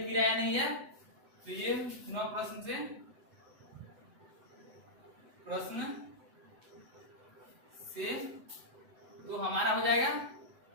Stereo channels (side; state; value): left; late; 7.9 ms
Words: किराया नहीं है। तो ये पुनः प्रश्न से तो हमारा हो जाएगा